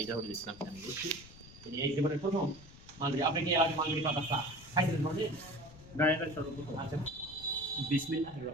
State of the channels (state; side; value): noise; left; rumble, 19 dB below the sound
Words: জহুরুল ইসলাম আমি বলছি, তিনি এই জীবনের প্রথম মালবেরি। আপনি কি এর আগে মালবেরি পাতা চা খাইছেন কোনদিন? না, এটা সর্বপ্রথম। আচ্ছা, বিসমিল্লাহির